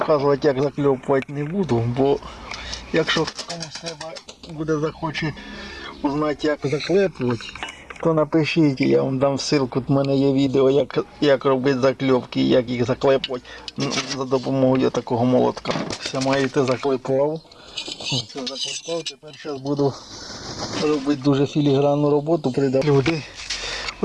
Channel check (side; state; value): both; identical; correlation 1.00